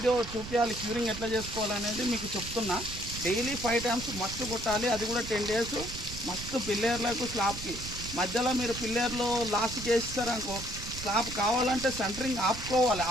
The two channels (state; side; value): noise; right; rumble, 10 dB below the sound